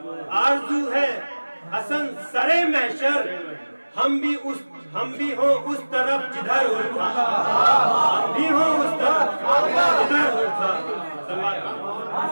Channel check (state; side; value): inverted; both; correlation -1.00